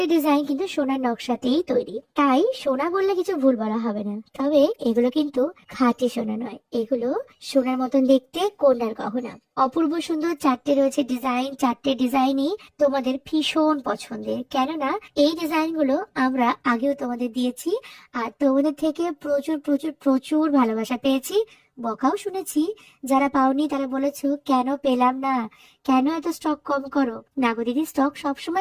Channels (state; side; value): identical; both; correlation 1.00